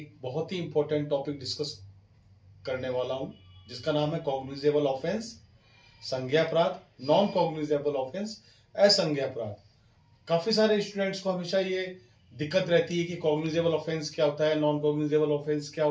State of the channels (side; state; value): both; identical; correlation 1.00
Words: बहुत ही इंपॉर्टेंट टॉपिक डिस्कस करने वाला हूं, जिसका नाम है कॉग्निजेबल ऑफेंस, संज्ञेय अपराध, नॉन कॉग्निजेबल ऑफेंस, असंज्ञेय अपराध। काफी सारे स्टूडेंट्स को हमेशा ये दिक्कत रहती है कि कॉग्निजेबल ऑफेंस क्या होता है, नॉन कॉग्निजेबल ऑफेंस क्या